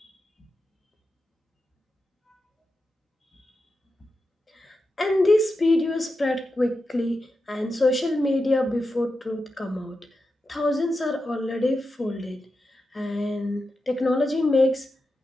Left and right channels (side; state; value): both; normal; correlation 0.89